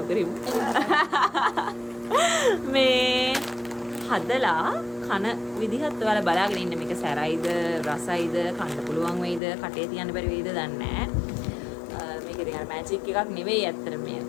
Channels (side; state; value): right; drops out; at 9.4 s